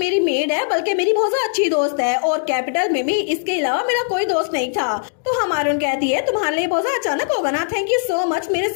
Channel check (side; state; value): right; silent; digital silence